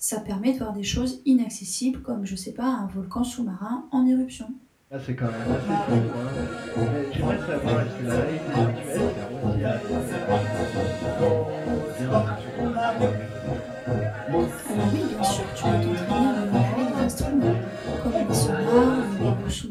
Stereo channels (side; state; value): both; identical; correlation 1.00